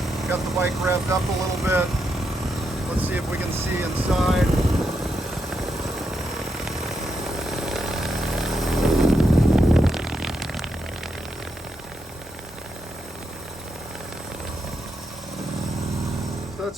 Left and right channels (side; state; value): both; normal; correlation 0.82